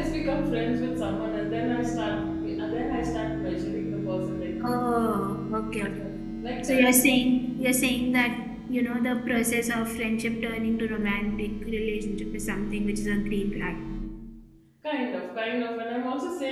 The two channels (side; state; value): both; identical; correlation 1.00